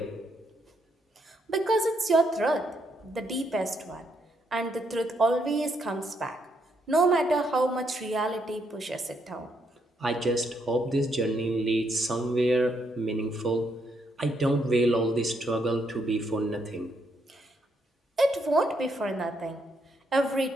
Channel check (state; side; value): normal; both; correlation 0.76